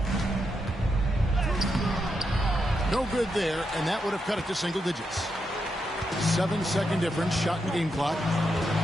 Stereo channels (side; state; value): both; normal; correlation 0.83